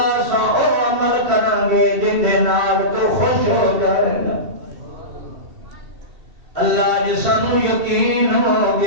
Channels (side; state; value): left; late; 2.7 ms